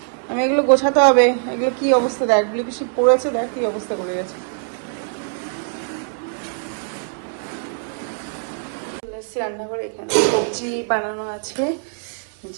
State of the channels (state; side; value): silent; left; digital silence